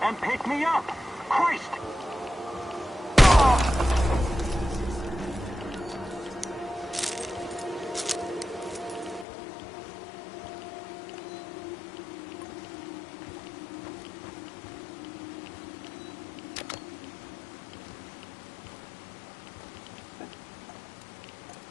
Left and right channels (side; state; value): right; drops out; at 9.2 s